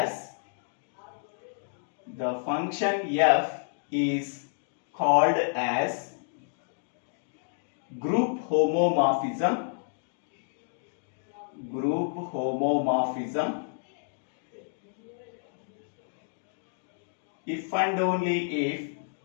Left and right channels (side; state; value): right; silent; digital silence